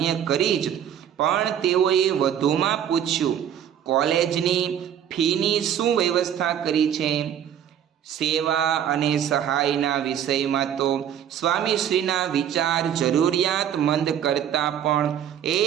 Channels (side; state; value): left; quieter; 9.6 dB